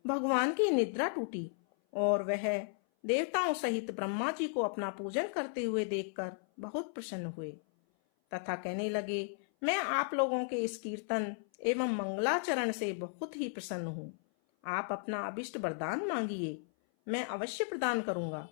भगवान की निद्रा टूटी और वह देवताओं सहित ब्रह्मा जी को अपना पूजन करते हुए देखकर बहुत प्रसन्न हुए तथा कहने लगे, मैं आप लोगों के इस कीर्तन एवं मंगलाचरण से बहुत ही प्रसन्न हूँ। आप अपना अभिष्ट वरदान मांगिए, मैं अवश्य प्रदान करूंगा।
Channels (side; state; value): right; silent; 54 dB below the other